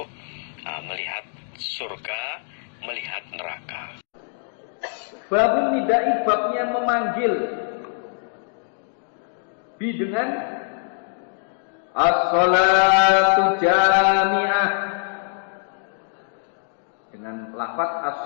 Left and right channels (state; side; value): silent; right; 63 dB below the other